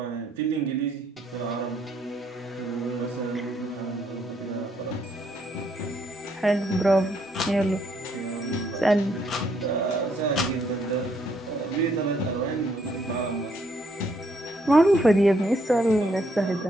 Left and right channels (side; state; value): both; normal; correlation 0.71